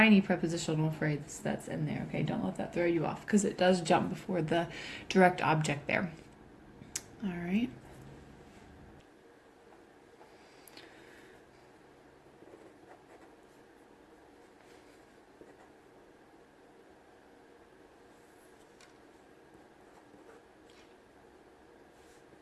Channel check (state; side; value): identical; both; correlation 1.00